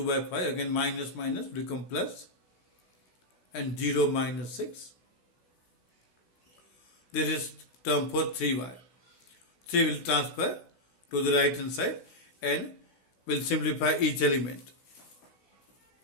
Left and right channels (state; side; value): late; right; 16 ms